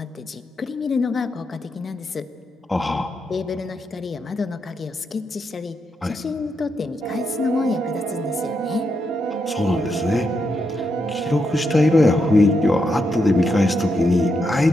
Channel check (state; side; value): normal; both; correlation 0.82